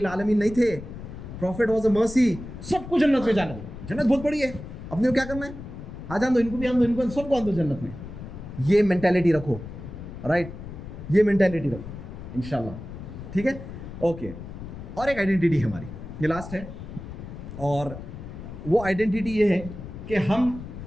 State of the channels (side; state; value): left; noise; rumble, 11 dB below the sound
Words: आलमीन नहीं थे। प्रॉफिट वॉज अ मर्सी, सबको जन्नत में जाने दो, जन्नत बहुत बड़ी है, अपने को क्या करना है, आ जान दो, इनको भी आन दो, इनको सबको आन दो जन्नत में। ये मेंटालिटी रखो, राइट, ये मेंटालिटी रखो इंशाल्लाह, ठीक है, ओके। और एक आइडेंटिटी है हमारी, ये लास्ट है, और वो आइडेंटिटी ये है कि हम